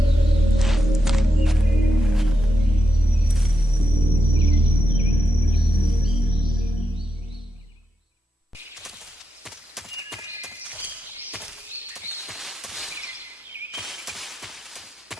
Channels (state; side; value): normal; both; correlation 0.86